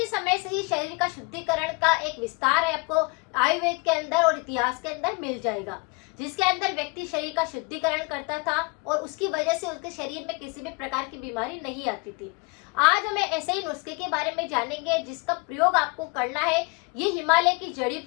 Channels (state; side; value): quieter; right; 29.3 dB